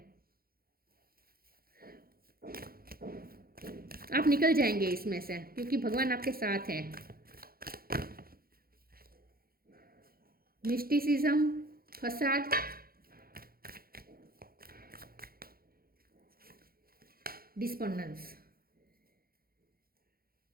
आप निकल जाएंगे इसमें से, क्योंकि भगवान आपके साथ है। मिस्टिसिज्म, फसाद, डिस्पोंडेंस।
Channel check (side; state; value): left; late; 0.43 ms